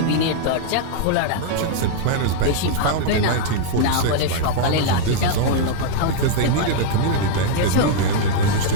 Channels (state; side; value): different; both; correlation -0.01